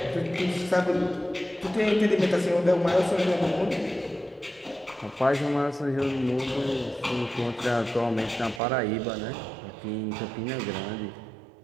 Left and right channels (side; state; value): left; drops out; at 8.6 s